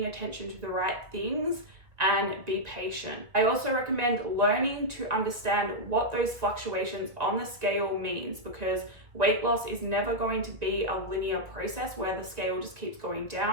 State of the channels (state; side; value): late; left; 1.9 ms